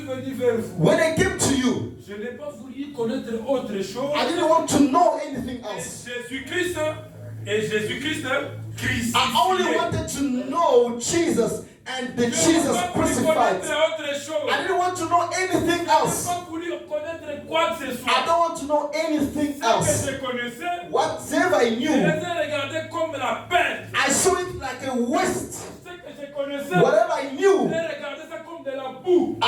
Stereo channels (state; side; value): identical; both; correlation 1.00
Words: venu vers vous, When I came to you, je n'ai pas voulu connaître autre chose. I didn't want to know anything Et else. Jésus-Christ et Jésus-Christ crucifié. I only wanted to know Jesus and the Jesus crucified. I didn't want to know anything else. pas voulu connaître quoi que ce soit. I don't want to know anything Ce que else. je connaissais, Whatever I je les knew, ai regardés comme la perte. I saw it like a waste. Ce que je connaissais, Whatever I je knew, regardais ça comme de la boue.